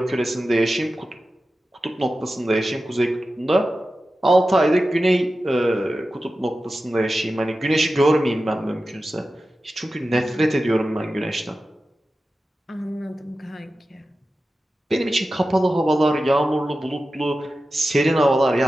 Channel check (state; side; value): normal; both; correlation 0.93